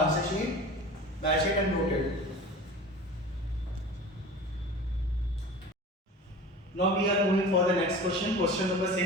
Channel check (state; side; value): normal; both; correlation 0.37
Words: sheet, match it and note it. Now we are moving for the next question. Question number